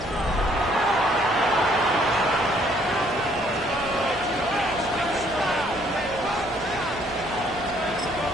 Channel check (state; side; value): noise; right; hum, 16 dB below the sound